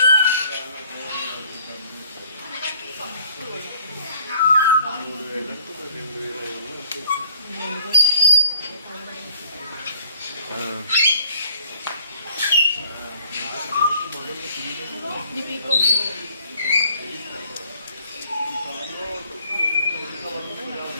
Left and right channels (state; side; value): inverted; both; correlation -0.57